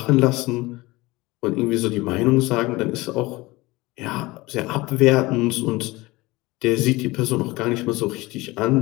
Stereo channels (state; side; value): quieter; right; 21.4 dB